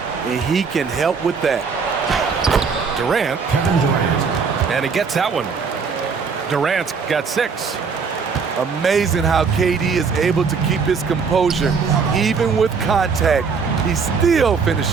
and he can help with that. Durant. Kevin Durant. And he gets that one. Durant's got 6. Amazing how KD is able to keep his composure. Even with contact, he still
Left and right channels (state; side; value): quieter; left; 5.5 dB